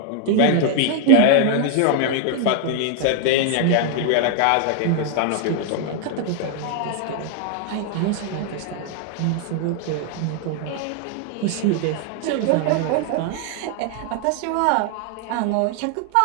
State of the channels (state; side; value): different; both; correlation 0.00